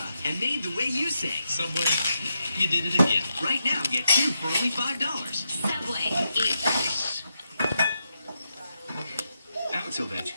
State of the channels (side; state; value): both; inverted; correlation -0.84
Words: and made the way you say. Subway, you did it again. Right now, get 2 for only $5. Subway, eat fresh. Alex